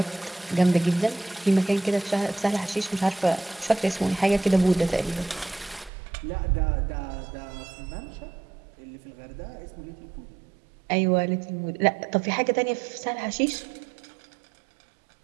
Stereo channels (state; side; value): drops out; left; at 5.9 s